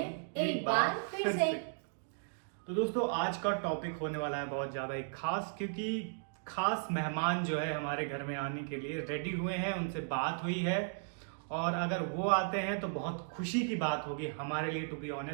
एक बार फिर से। तो दोस्तों, आज का टॉपिक होने वाला है बहुत ज्यादा एक खास, क्योंकि खास मेहमान जो है हमारे घर में आने के लिए रेडी हुए हैं, उनसे बात हुई है और अगर वो आते हैं तो बहुत खुशी की बात होगी हमारे लिए, टू बी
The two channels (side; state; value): left; silent; digital silence